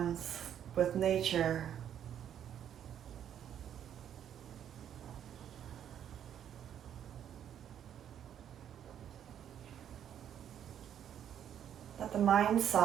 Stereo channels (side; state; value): left; quieter; 9.7 dB